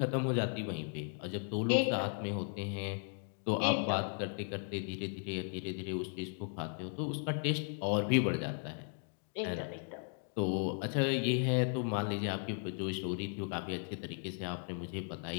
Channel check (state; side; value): silent; right; 54 dB below the other